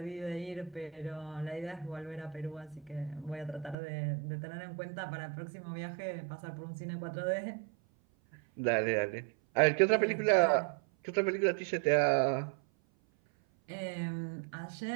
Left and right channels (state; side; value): drops out; left; at 3.8 s